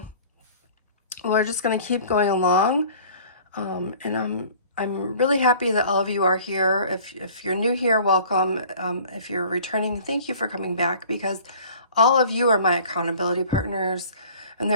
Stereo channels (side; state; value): both; inverted; correlation -0.48